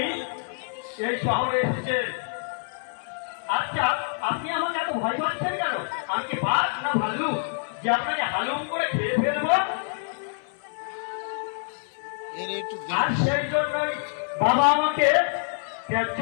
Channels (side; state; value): right; silent; 61 dB below the other